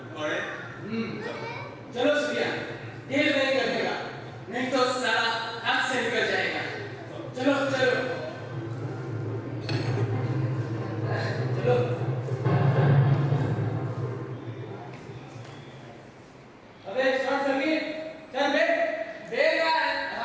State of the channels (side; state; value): both; identical; correlation 1.00